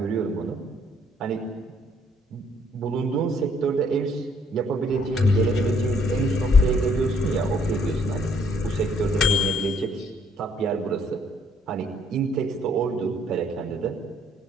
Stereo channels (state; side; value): normal; both; correlation 0.66